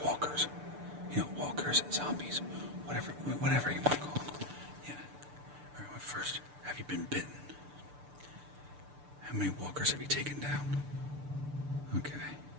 walkers. You know, walkers, zombies, whatever you want to call them. Yeah. Alright, well, first, have you been bitten? How many walkers have you taken down? Okay.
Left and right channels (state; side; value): late; left; 6.8 ms